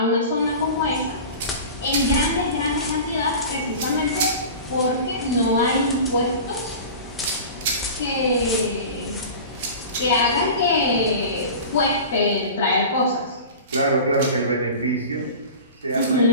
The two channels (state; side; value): inverted; both; correlation -0.35